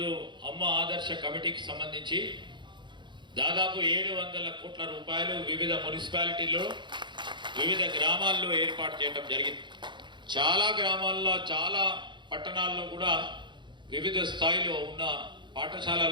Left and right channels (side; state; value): left; late; 0.23 ms